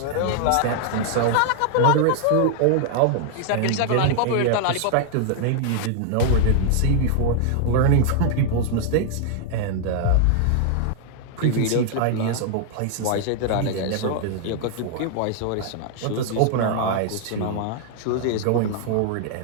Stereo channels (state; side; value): different; both; correlation 0.00